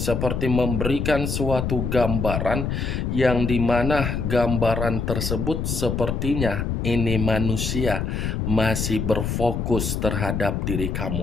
memberikan suatu gambaran yang dimana gambaran tersebut sepertinya ini manusia masih berfokus terhadap diri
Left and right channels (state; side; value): noise; left; rumble, 1 dB below the sound